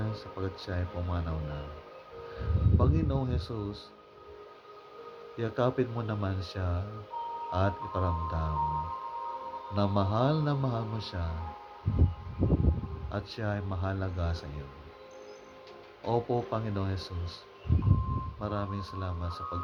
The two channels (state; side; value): identical; both; correlation 1.00